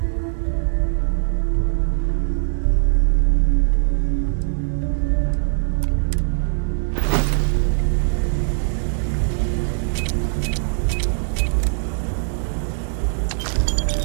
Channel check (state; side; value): silent; left; 58 dB below the other